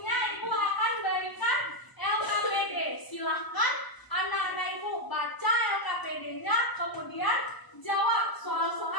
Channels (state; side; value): late; right; 1.0 ms